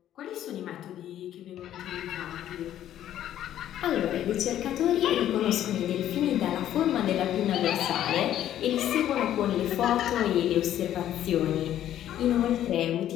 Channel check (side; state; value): right; quieter; 11.6 dB